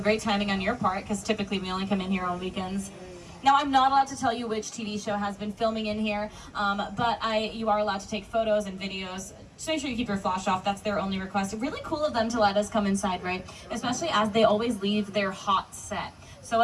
timing on your part because typically we only come in here on weekends. Now, I'm not allowed to tell you which TV show has been filming in here, but you are allowed to take photos and videos. Just make sure you keep your flash off. That's their only request. Really cool of them to let us come inside, right? Especially as they always leave their hot set. So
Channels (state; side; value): identical; both; correlation 1.00